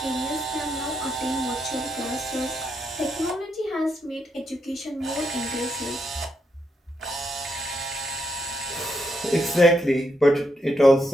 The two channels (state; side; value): normal; both; correlation 0.80